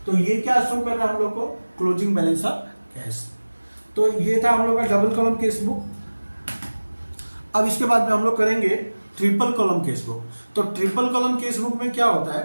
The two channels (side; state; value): both; inverted; correlation -1.00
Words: तो ये क्या शो कर रहा है हम लोग को, क्लोजिंग बैलेंस ऑफ कैश। तो ये था हम लोग का डबल कॉलम केस बुक। अब इसके बाद में हम लोग करेंगे ट्रिपल कॉलम केस बुक। तो ट्रिपल कॉलम केस बुक में क्या होता